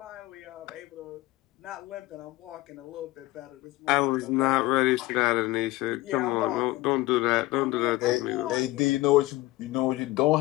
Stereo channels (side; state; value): right; quieter; 19.0 dB